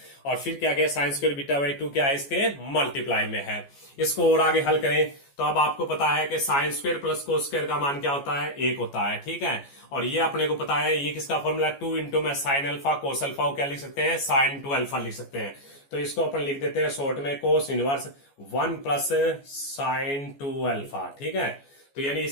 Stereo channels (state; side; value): late; right; 14 ms